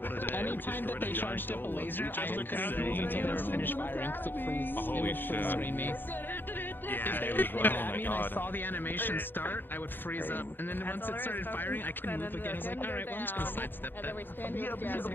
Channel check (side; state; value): right; late; 0.096 ms